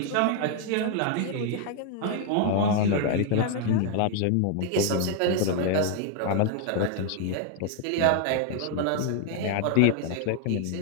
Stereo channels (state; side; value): different; both; correlation 0.00